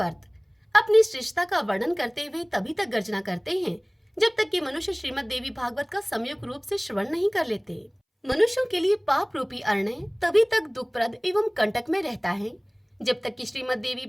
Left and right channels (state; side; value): identical; both; correlation 1.00